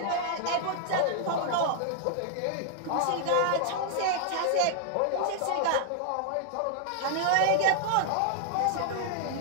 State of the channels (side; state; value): both; different; correlation -0.01